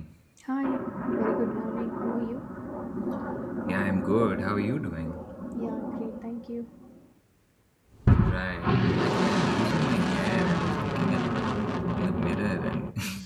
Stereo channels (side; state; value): both; identical; correlation 1.00